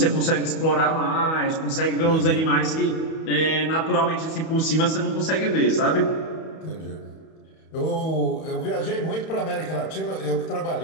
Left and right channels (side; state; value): right; late; 31 ms